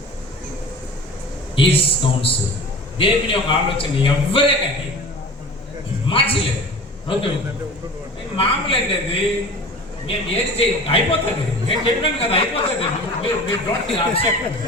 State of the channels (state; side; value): normal; both; correlation 0.38